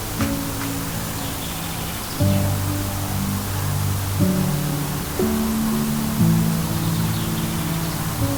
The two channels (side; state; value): both; identical; correlation 1.00